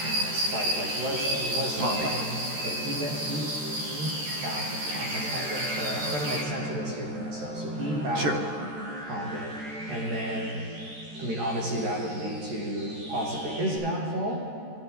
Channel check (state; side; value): late; left; 13 ms